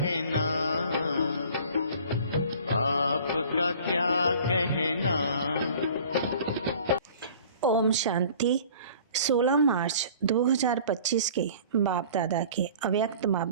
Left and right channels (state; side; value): inverted; both; correlation -0.48